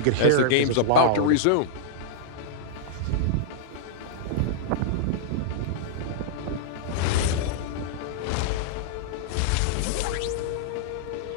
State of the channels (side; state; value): both; different; correlation -0.02